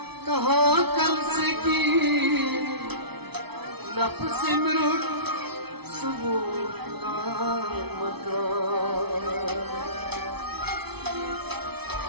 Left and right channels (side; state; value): left; late; 0.98 ms